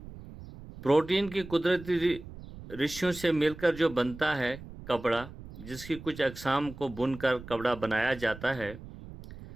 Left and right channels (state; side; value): noise; right; rumble, 15 dB below the sound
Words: پروٹین کی قدرتی ریشوں سے مل کر جو بنتا ہے کپڑا، جس کی کچھ اقسام کو بن کر کپڑا بنایا جاتا ہے۔